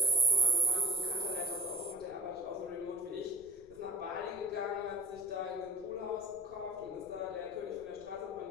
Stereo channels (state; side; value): noise; left; rumble, 26 dB below the sound